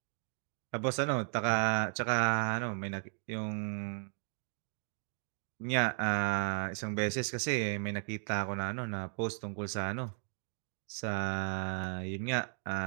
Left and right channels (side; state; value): left; silent; 54 dB below the other